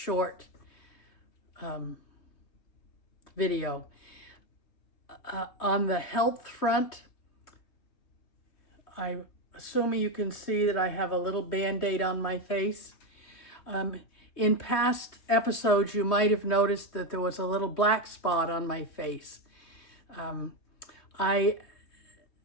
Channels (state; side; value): late; right; 3.2 ms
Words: video. On the health front, I'm assuming you can see that I have a little band-aid on my face. In past episodes, you might have noticed that there was a little black spot on my face. I